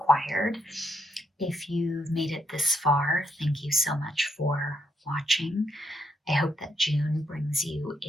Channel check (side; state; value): both; normal; correlation 0.78